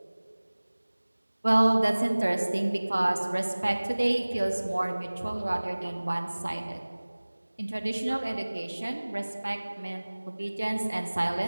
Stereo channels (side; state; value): both; inverted; correlation -1.00